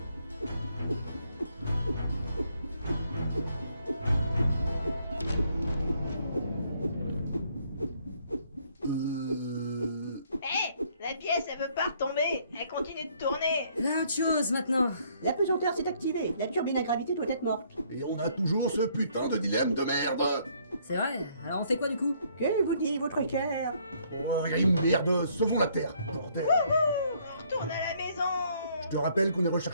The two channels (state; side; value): inverted; both; correlation -0.66